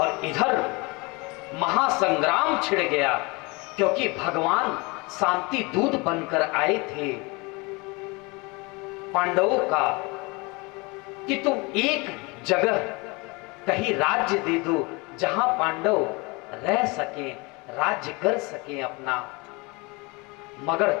इधर महासंग्राम छिड़ गया, क्योंकि भगवान शांति दूत बनकर आए थे पांडवों का कि तुम एक जगह कहीं राज्य दे दो जहां पांडव रह सके, राज्य कर सके अपना। मगर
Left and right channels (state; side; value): quieter; right; 26.8 dB